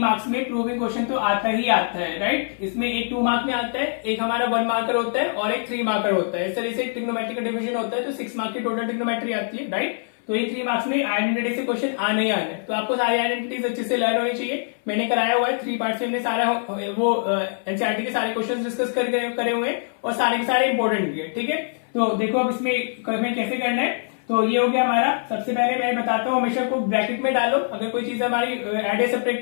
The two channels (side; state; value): right; silent; 61 dB below the other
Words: में प्रूविंग क्वेश्चन तो आता ही आता है, राइट। इसमें एक 2 मार्क में आता है, एक हमारा 1 मार्कर होता है और एक 3 मार्कर होता है। इस तरह से ट्रिग्नोमेट्री का डिवीजन होता है तो 6 मार्क की टोटल ट्रिग्नोमेट्री आती है, राइट। तो ये 3 मार्क्स में आइडेंटिटी से क्वेश्चन आने ही आने, तो आपको सारी आइडेंटिटीज अच्छे से लर्न होनी चाहिए। मैंने कराया हुआ है 3 पार्ट्स में, हमने सारा वो एनसीईआरटी के सारे क्वेश्चन डिस्कस करे हुए हैं और सारे के सारे इंपॉर्टेंट भी है, ठीक है। तो देखो अब इसमें कैसे करना है। तो ये हो गया हमारा। सबसे पहले मैं बताता हूँ, हमेशा को ब्रैकेट में डालो अगर कोई चीज हमारी एड या